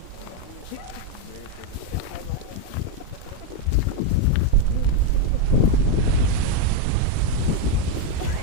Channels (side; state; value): both; different; correlation 0.02